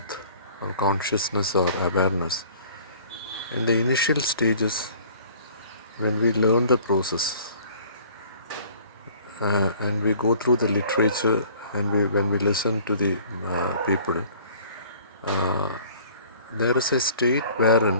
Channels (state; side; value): inverted; both; correlation -0.52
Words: or consciousness or awareness, in the initial stages, when we learn the process and we go through the literature and when we listen to the people, uh, there is a state